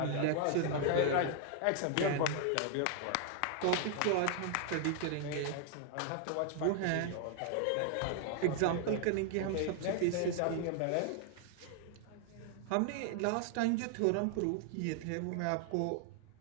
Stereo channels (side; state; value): both; different; correlation 0.00